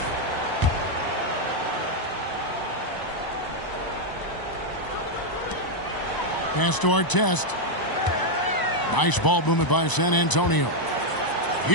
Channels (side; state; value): right; late; 1.0 ms